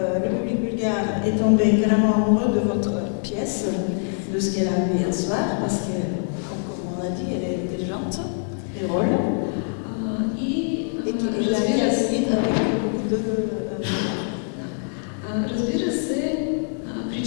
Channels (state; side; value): silent; right; 63 dB below the other